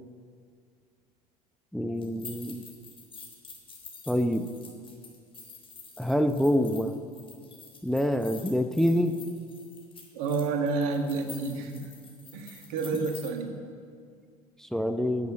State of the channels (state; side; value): normal; both; correlation 0.75